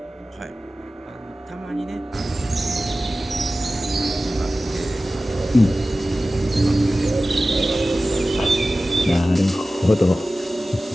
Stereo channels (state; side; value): normal; both; correlation 0.96